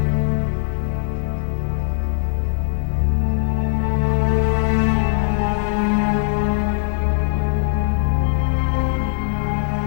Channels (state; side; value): silent; right; 58 dB below the other